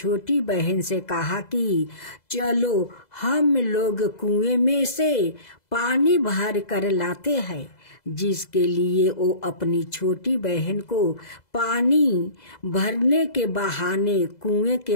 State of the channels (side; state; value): right; late; 2.0 ms